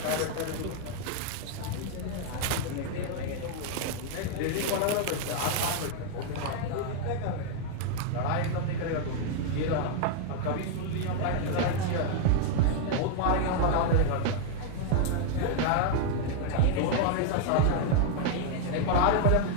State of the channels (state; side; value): different; both; correlation 0.00